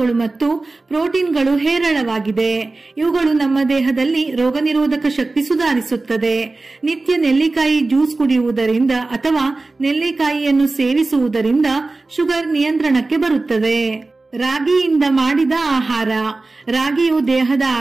ಮತ್ತು ಪ್ರೋಟೀನ್ಗಳು ಹೇರಳವಾಗಿದೆ. ಇವುಗಳು ನಮ್ಮ ದೇಹದಲ್ಲಿ ರೋಗನಿರೋಧಕ ಶಕ್ತಿ ಸುಧಾರಿಸುತ್ತದೆ. ನಿತ್ಯ ನೆಲ್ಲಿಕಾಯಿ ಜ್ಯೂಸ್ ಕುಡಿಯುವುದರಿಂದ ಅಥವಾ ನೆಲ್ಲಿಕಾಯಿಯನ್ನು ಸೇವಿಸುವುದರಿಂದ ಶುಗರ್ ನಿಯಂತ್ರಣಕ್ಕೆ ಬರುತ್ತದೆ. ರಾಗಿಯಿಂದ ಮಾಡಿದ ಆಹಾರ. ರಾಗಿಯು ದೇಹದ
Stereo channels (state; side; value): quieter; left; 3.4 dB